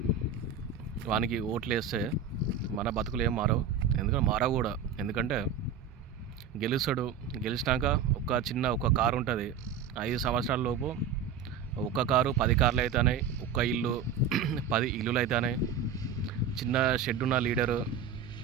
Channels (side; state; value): left; quieter; 6.8 dB